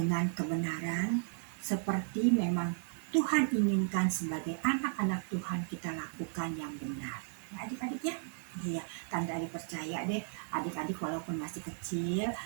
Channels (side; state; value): left; silent; digital silence